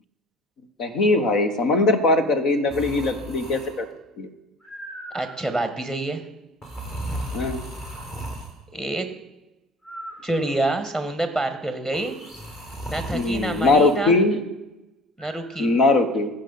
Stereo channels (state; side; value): normal; both; correlation 0.42